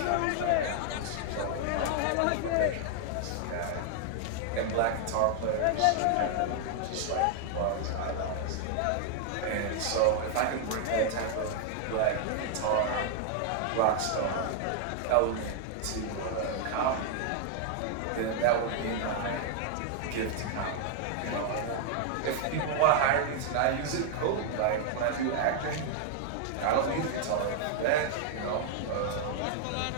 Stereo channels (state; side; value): different; both; correlation 0.00